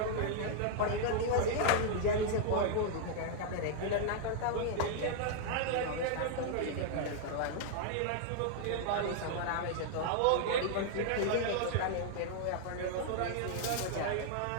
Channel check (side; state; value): both; different; correlation -0.01